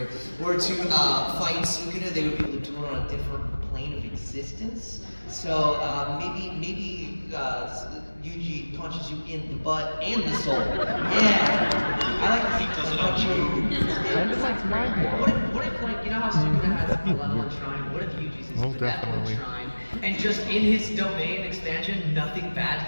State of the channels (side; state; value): both; inverted; correlation -1.00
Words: were to fight Sukuna, they would be able to do it on a different plane of existence. So maybe Yuji punches you in the butt and the soul. Yeah, I like to see does it on you. What if like, you know how Sukuna has a malevolent shrine? What if Yuji's his benevolent shrine? And just in his domain expansion, nothing bad